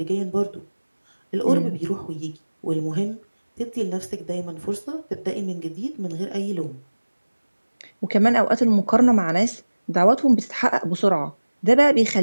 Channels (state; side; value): inverted; both; correlation -1.00